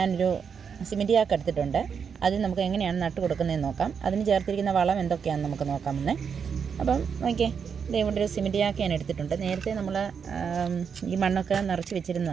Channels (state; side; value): quieter; left; 6.6 dB